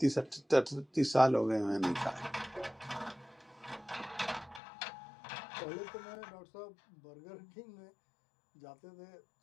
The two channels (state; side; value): drops out; right; at 4.6 s